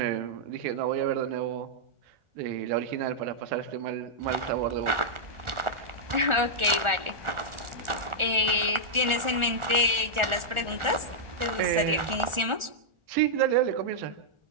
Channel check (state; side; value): late; left; 1.4 ms